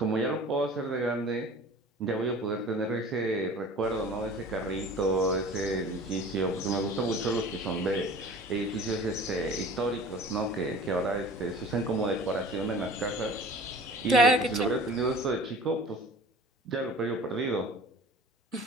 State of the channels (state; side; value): normal; both; correlation 0.43